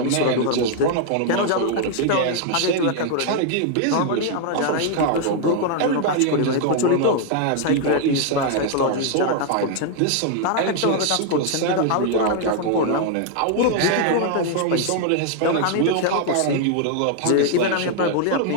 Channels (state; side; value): different; both; correlation 0.00